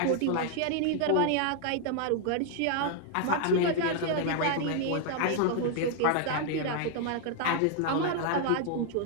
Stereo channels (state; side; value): different; both; correlation 0.00